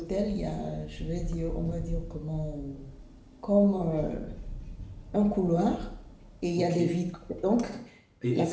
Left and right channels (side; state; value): both; identical; correlation 1.00